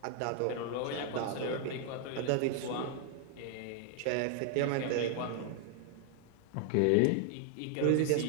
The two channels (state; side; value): different; both; correlation 0.00